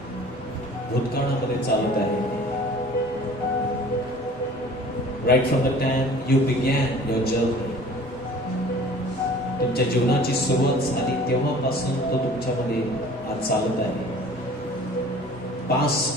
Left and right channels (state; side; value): normal; both; correlation 0.47